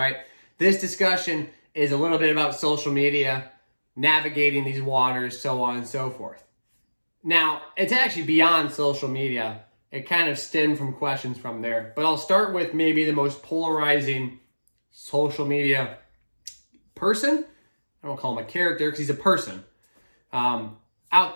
This discussion is a little bit about social media, navigating these waters, so on and so forth. Now, it's actually beyond social media. It kind of stemmed from questions from there. But I'll start with maybe the most polarizing social media person. I don't call him a character because he's a person. Out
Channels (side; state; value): both; inverted; correlation -1.00